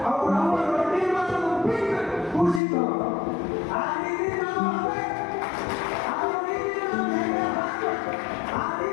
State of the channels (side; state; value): right; drops out; at 2.6 s